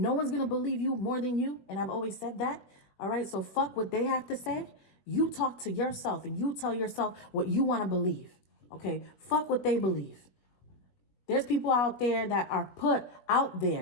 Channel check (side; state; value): right; late; 21 ms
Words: one's going to believe you more than you. And I've always said that. All right. So fuck what they have to say. You talk to yourself and you tell yourself what you want to believe. Okay. Fuck what they believe. There's people out there that are put out